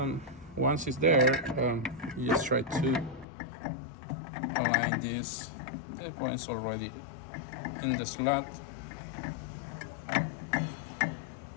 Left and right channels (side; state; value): right; drops out; at 3.2 s